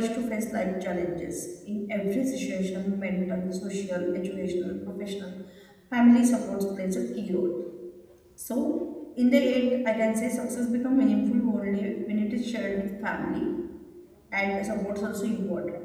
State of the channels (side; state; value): both; identical; correlation 1.00